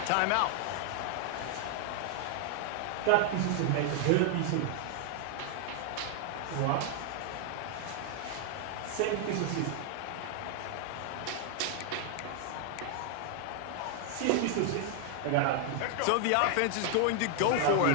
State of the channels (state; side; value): different; both; correlation 0.00